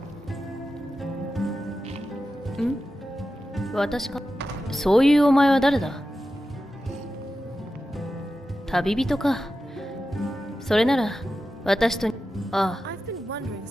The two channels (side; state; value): both; normal; correlation 0.92